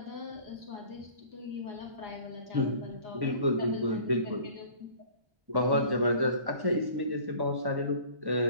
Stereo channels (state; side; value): late; left; 1.1 ms